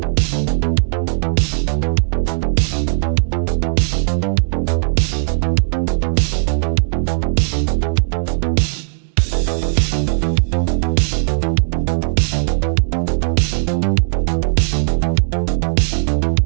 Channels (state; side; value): silent; left; digital silence